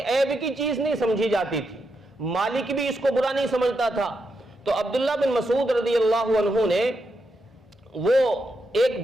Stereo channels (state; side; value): normal; both; correlation 0.84